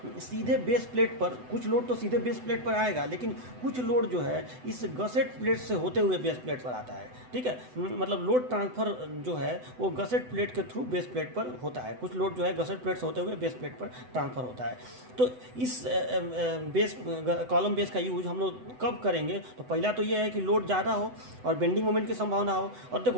सीधे बेस प्लेट पर, कुछ लोड तो सीधे बेस प्लेट पर आएगा, लेकिन कुछ लोड जो है इस गसेट प्लेट से होते हुए बेस प्लेट पर आता है। ठीक है, मतलब लोड ट्रांसफ़र जो है वो गसेट प्लेट के थ्रू बेस प्लेट पर होता है, कुछ लोड जो है गसेट प्लेट से होते हुए बेस प्लेट पर ट्रांसफ़र होता है। तो इस बेस कॉलम बेस का यूज हम लोग कब करेंगे? तो पहला तो ये है कि लोड ज़्यादा हो और बेंडिंग मोमेंट की संभावना हो। और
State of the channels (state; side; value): late; left; 7.9 ms